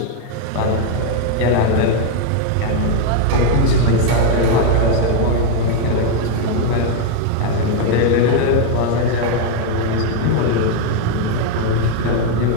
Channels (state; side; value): different; both; correlation 0.01